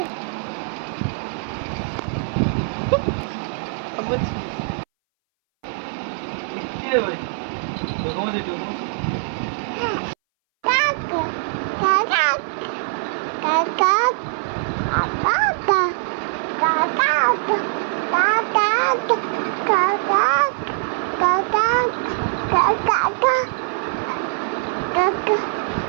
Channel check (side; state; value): left; silent; 61 dB below the other